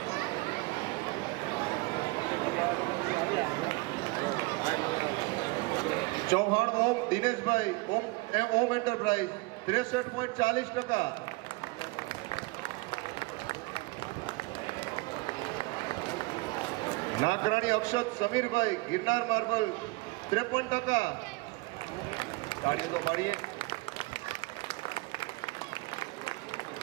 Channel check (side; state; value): left; quieter; 23.9 dB